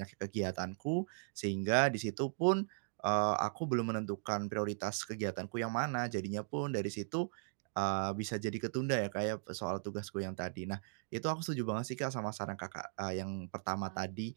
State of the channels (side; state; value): left; silent; digital silence